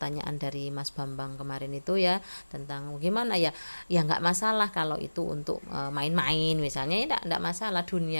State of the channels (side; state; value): both; inverted; correlation -1.00